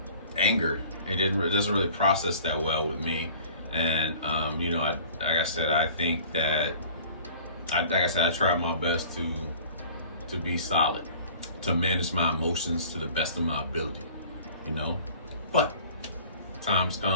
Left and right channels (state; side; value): inverted; both; correlation -0.47